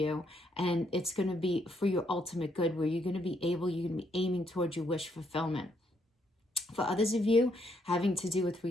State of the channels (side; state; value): both; normal; correlation 0.73